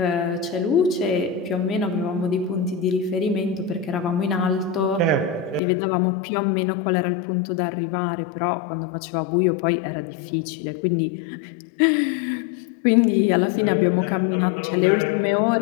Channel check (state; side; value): drops out; right; at 5.6 s